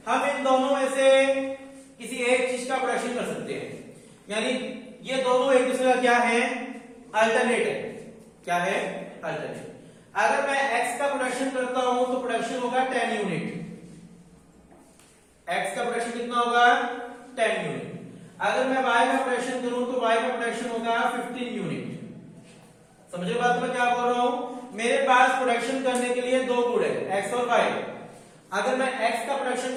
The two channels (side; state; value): both; identical; correlation 1.00